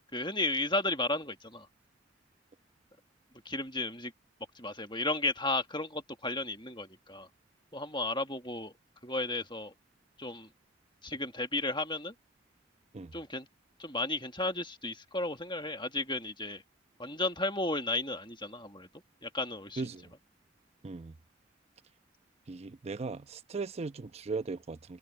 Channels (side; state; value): both; normal; correlation 0.10